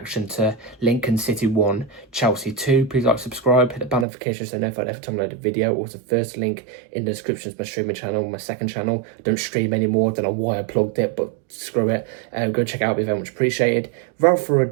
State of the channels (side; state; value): left; drops out; at 4.0 s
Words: to Lincoln City 1, Chelsea 2, please like, subscribe, hit the bell notification so notified every time I load a video. Also, first link in the description is my streaming channel, my second channel. I don't stream anymore. I don't know why I plugged it, but screw it. Go check it out. It'd be very much appreciated. Without further